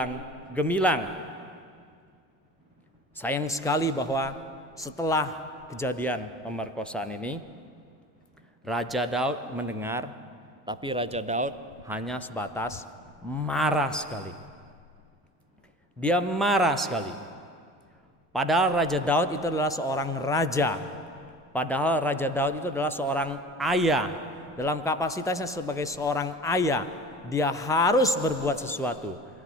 gemilang. Sayang sekali bahwa setelah kejadian pemerkosaan ini, Raja Daud mendengar, tapi Raja Daud hanya sebatas marah sekali. Dia marah sekali. Padahal Raja Daud itu adalah seorang raja. Padahal Raja Daud itu adalah seorang ayah. Dalam kapasitasnya sebagai seorang ayah, dia harus berbuat sesuatu.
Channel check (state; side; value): normal; both; correlation 0.40